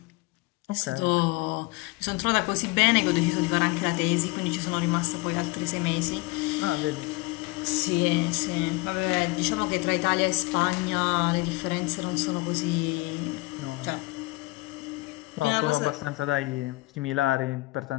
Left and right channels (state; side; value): quieter; right; 23.3 dB